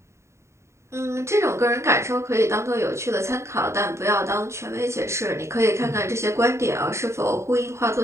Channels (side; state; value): left; late; 0.14 ms